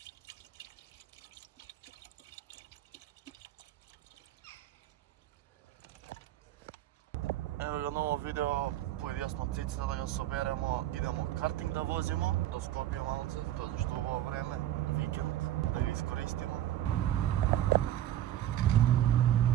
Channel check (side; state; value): left; quieter; 12.6 dB